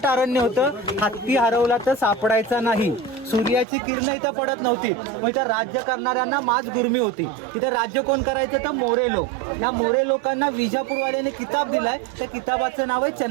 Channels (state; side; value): drops out; left; at 3.7 s